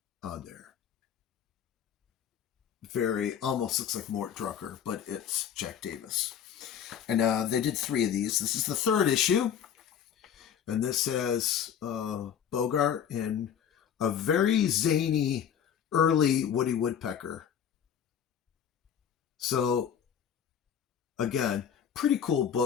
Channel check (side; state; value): right; quieter; 8.6 dB